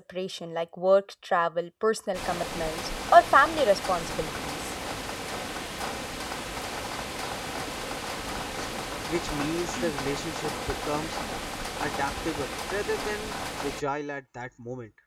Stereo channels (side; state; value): both; identical; correlation 1.00